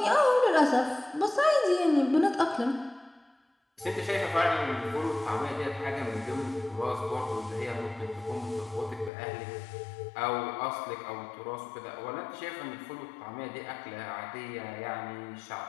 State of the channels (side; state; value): right; drops out; at 9.1 s